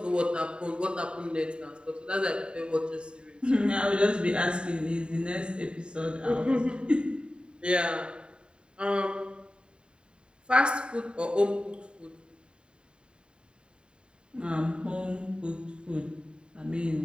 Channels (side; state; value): left; late; 0.052 ms